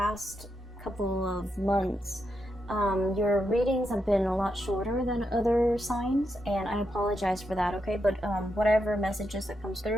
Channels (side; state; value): both; normal; correlation 0.83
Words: couple of months, your readings have been a lot shorter than other signs, and I apologize for that, okay? But whatever messages that comes